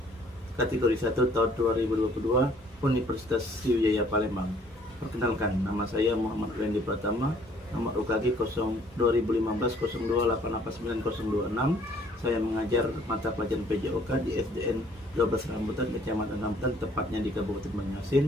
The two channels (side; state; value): both; normal; correlation 0.59